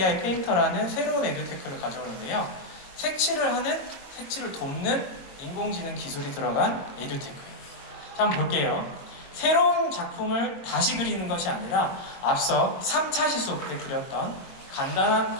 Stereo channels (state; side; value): late; right; 22 ms